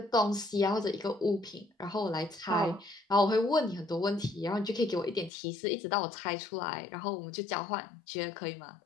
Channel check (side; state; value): right; drops out; at 5.3 s